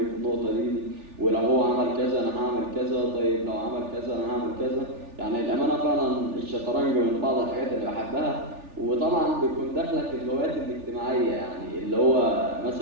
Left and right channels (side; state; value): left; late; 3.4 ms